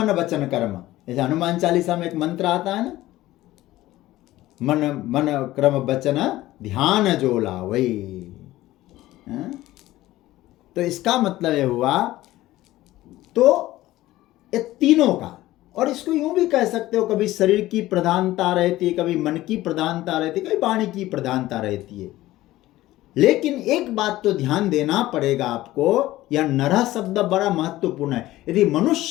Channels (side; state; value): right; quieter; 16.2 dB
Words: वचन कर्म। जैसे हनुमान चालीसा में एक मंत्र आता है ना, मन क्रम वचन ध्यान जो लावै। तो इसका मतलब ये हुआ, तो ये तीनों का, और इसको यूं भी कह सकते हो, कभी शरीर की प्रधानता रहती है, कभी मन की प्रधानता रहती है, कभी वाणी की प्रधानता रहती है। लेकिन एक बात तो ध्यान देना पड़ेगा आपको, यह नरः शब्द बड़ा महत्वपूर्ण है। यदि